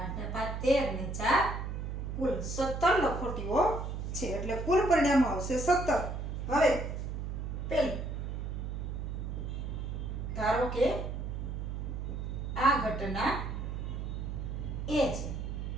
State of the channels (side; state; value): right; noise; hum, 4 dB below the sound